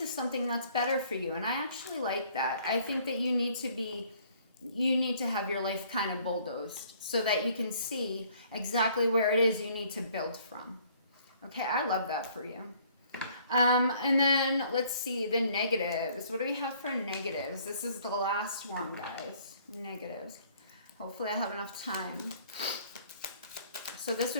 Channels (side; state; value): both; inverted; correlation -0.59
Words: something that's better for you, and I actually like that. I think that you need to have your life kind of bulldozed so that you can see exactly where it is you need to build from. Okay, I love that for you. And then let's see the negatives. What do we have for negatives? This is the last one, guys. Negatives. Hopefully I have enough time. So this